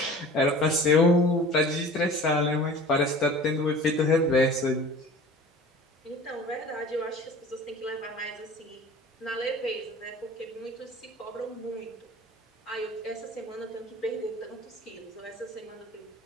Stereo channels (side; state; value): both; normal; correlation 0.43